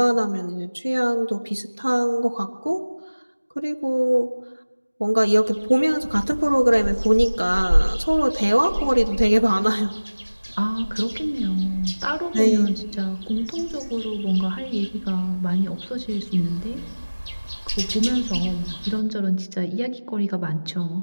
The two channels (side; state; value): both; inverted; correlation -1.00